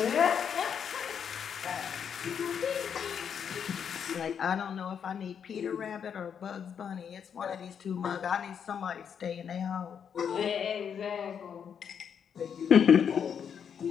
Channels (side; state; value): right; quieter; 7.6 dB